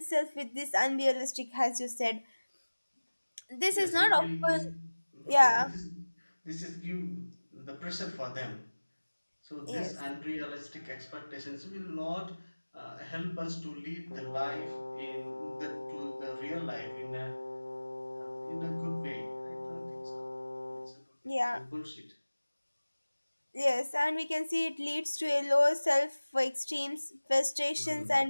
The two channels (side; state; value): both; inverted; correlation -1.00